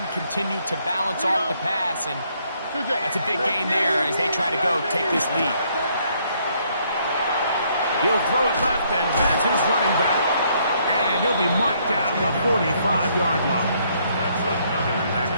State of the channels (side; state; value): both; inverted; correlation -0.69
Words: continue to balance off the pass? And that's a big gain there as they try to go take this lead. He'll throw it left and has his running back. And he'll be marked down at the 45-yard line. Back